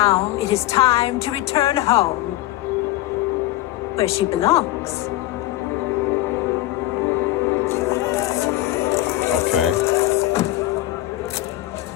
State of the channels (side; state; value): right; quieter; 16.1 dB